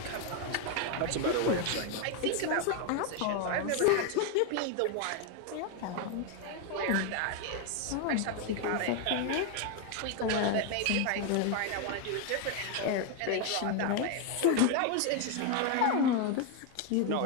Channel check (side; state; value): both; different; correlation 0.01